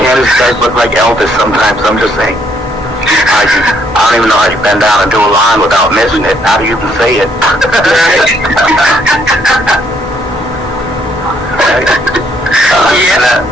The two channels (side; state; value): both; normal; correlation 0.69